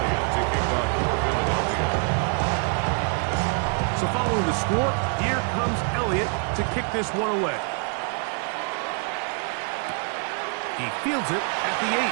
So following the score, here comes Elliott to kick this one away. He fields it at the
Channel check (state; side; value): quieter; left; 40.0 dB